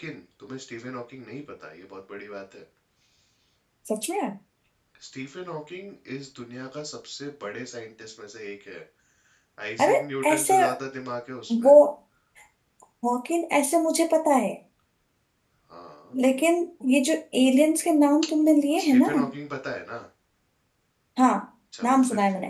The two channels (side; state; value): both; identical; correlation 1.00